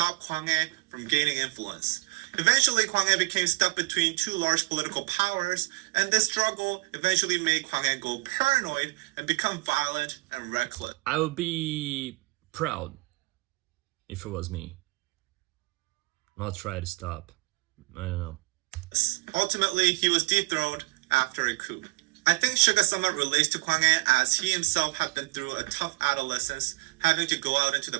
Kwanghae from gaining influence. Eventually, Kwanghae became stuck between two large political powers, and this struggle eventually made Kwanghae go paranoid and become violent and reckless. I would be proud if it was me. I'll try to stop. I don't know. Ultimately, he was dethroned after a coup. I think Suga somewhat relates to Kwanghae as he himself had been through a tough adolescence, having to go out into the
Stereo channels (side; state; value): left; quieter; 24.2 dB